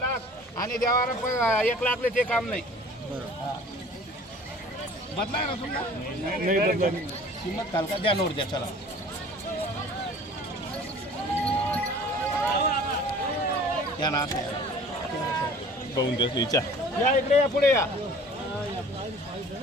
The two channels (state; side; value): normal; both; correlation 0.47